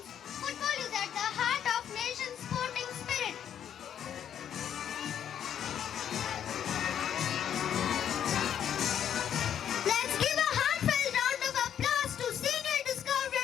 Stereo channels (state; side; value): quieter; right; 9.4 dB